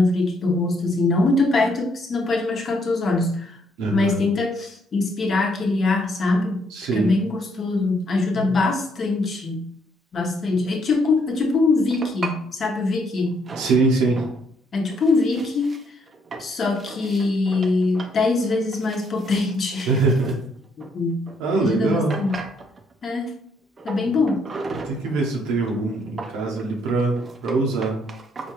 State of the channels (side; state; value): both; normal; correlation 0.71